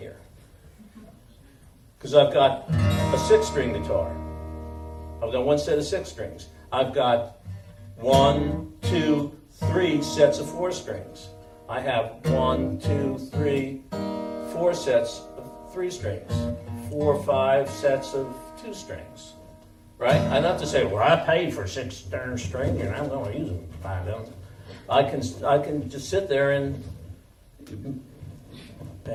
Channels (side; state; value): both; identical; correlation 1.00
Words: Because I've got a 6-string guitar. I've got one set of 6 strings. I've got 1, 2, 3 sets of 4 strings. I have 1, 2, 3, 4 sets of 3 strings. 4, 5 sets of 2 strings. Right? I don't have to say, well, I paid for 6 darn strings and I'm going to use them 5 of them. I can just sit there and